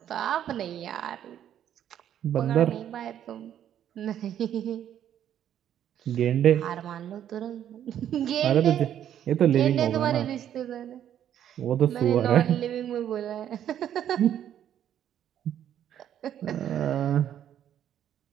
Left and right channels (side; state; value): left; quieter; 10.4 dB